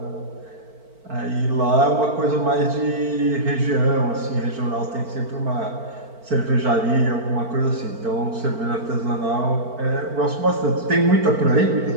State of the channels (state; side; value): late; left; 4.5 ms